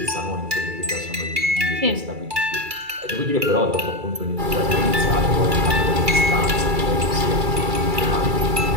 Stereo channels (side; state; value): left; late; 2.3 ms